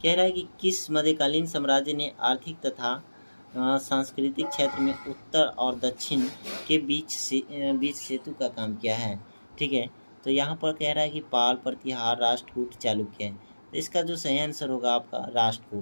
कह रहा है कि किस मध्यकालीन साम्राज्य ने आर्थिक तथा सांस्कृतिक क्षेत्र में उत्तर और दक्षिण के बीच सेतु का काम किया है, ठीक है। तो यहाँ पर कह रहा है कि पाल, प्रतिहार, राष्ट्रकूट, चालुक्य। तो इसका जो सही आंसर होगा आपका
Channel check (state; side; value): inverted; both; correlation -1.00